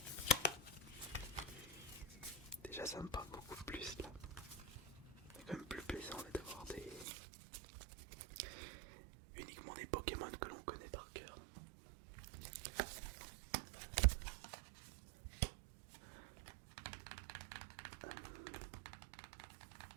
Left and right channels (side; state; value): left; drops out; at 7.1 s